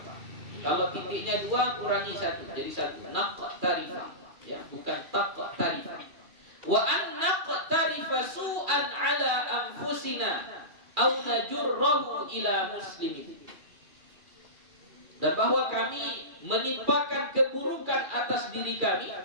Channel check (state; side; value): late; left; 2.3 ms